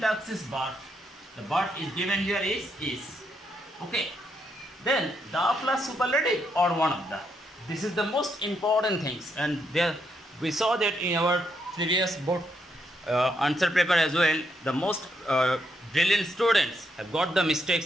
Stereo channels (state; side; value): normal; both; correlation 0.78